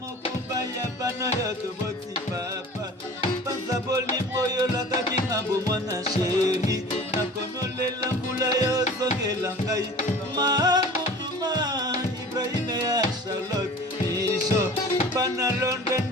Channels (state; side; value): normal; both; correlation 0.42